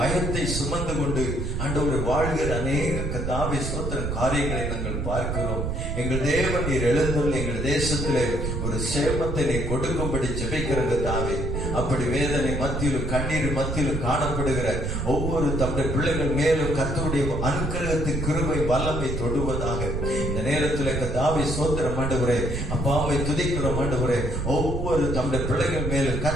சுமந்து கொண்டு ஆண்டவரை வாழ்கிற அநேக கர்த்தாவே ஸ்தோத்திரம் காரியங்களை நாங்கள் பார்க்கிறோம். எங்கள் தேவன் நீர் எழுந்துள்ள எங்கள் தேசத்திலே ஒரு சேமத்தை நீ கொடுக்கும்படி ஜெபிக்கிற கர்த்தாவே, அப்படி வேதனை மத்தியிலும் கண்ணீர் மத்தியிலும் காணப்படுகிற ஒவ்வொரு தம்முடைய பிள்ளைகள் மேலும் கர்த்தருடைய அனுக்கிரகத்தின் கிருபை வல்லமை தொடுவதாக இந்த நேரத்தில் கர்த்தாவே ஸ்தோத்திரம் ஆண்டவரே, அப்பாவை துதிக்கிறோம் ஆண்டவரே. ஒவ்வொரு தம்முடைய பிள்ளைகள் மேலும்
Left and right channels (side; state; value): right; noise; rumble, 2 dB below the sound